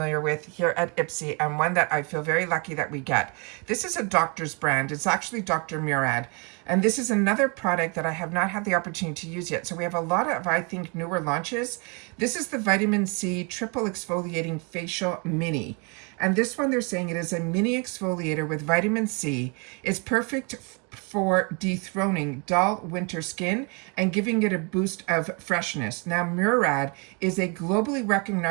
with here at IPSY, and one that I feel very lucky that we get. This is a doctor's brand. It's actually Dr. Murad. And this is another product that I have not had the opportunity to use yet. So we have a lot of, I think, newer launches. This is the Vitamin C Triple Exfoliating Facial Mini. And this one, they're saying it is a mini exfoliator with vitamin C. It's perfect for dethroning dull winter skin and giving it a boost of freshness. Now, Murad is a globally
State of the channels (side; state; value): left; quieter; 33.1 dB